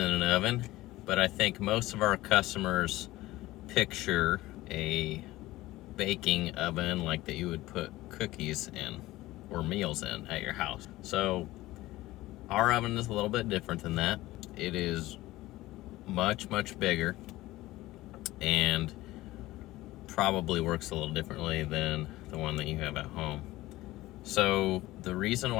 an oven, but I think most of our customers picture a baking oven like that you would put cookies in or meals in at your house. So our oven is a little bit different than that. It is much bigger and probably works a little differently than the one that you have at home. So the reason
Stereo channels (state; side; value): quieter; right; 17.6 dB